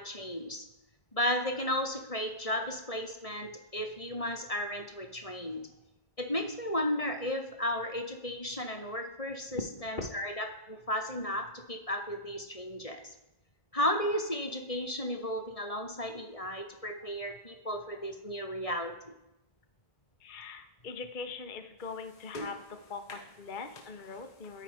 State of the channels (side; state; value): right; late; 1.7 ms